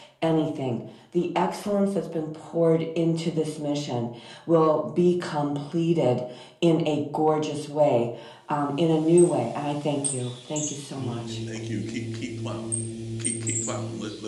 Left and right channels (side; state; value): both; identical; correlation 1.00